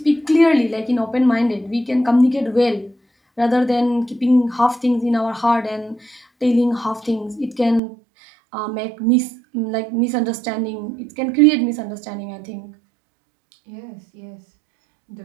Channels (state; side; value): drops out; left; at 7.8 s